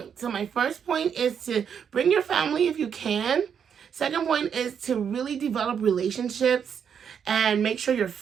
So my first point is to bring your family if you can. Second point is to really develop relationships and make sure your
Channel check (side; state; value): left; quieter; 7.6 dB